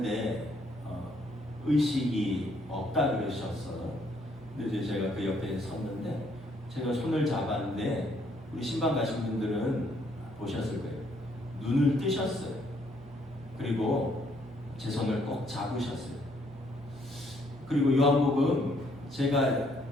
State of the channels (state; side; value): normal; both; correlation 0.68